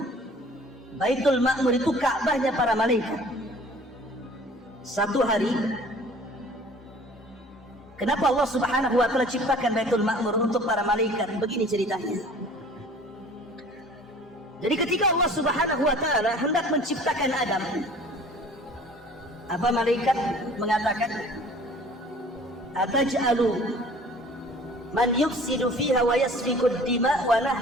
Baitul Ma'mur itu Ka'bahnya para malaikat. Satu hari, kenapa Allah Subhanahu wa Ta'ala ciptakan Baitul Ma'mur untuk para malaikat? Begini ceritanya. Jadi ketika Allah Subhanahu wa Ta'ala hendak menciptakan Adam, apa malaikat mengatakan, ataj'alu man yufsidu fiha wa yasfiku ad-dima wa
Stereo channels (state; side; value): normal; both; correlation 0.49